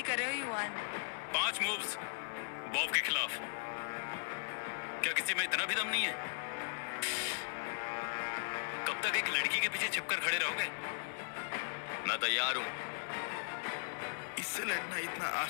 कर रहे हो युवान। 5 मूव्स बॉब के खिलाफ। क्या किसी में इतना भी दम नहीं है? कब तक एक लड़की के पीछे छिपकर खड़े रहोगे? मैं तैयार हूँ। इससे लड़ना इतना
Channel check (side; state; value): right; silent; digital silence